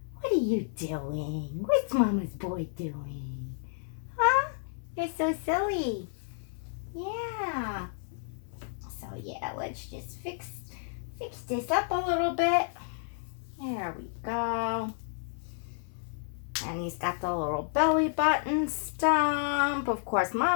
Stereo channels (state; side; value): silent; right; 57 dB below the other